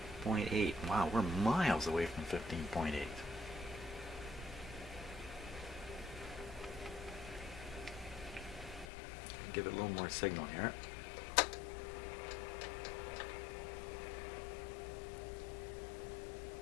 Wow, we're miles away from 15.8. Give it a little more signal here.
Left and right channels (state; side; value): drops out; right; at 8.8 s